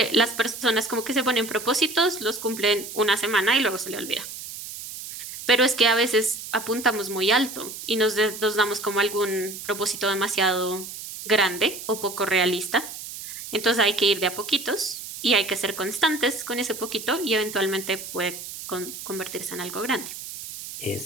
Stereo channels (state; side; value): noise; right; hiss, 10 dB below the sound